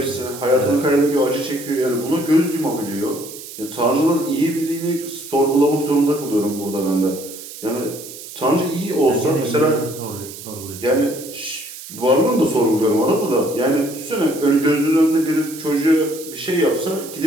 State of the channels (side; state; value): right; noise; hiss, 13 dB below the sound